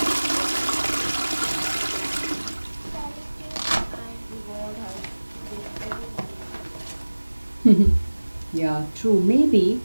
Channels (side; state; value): both; inverted; correlation -1.00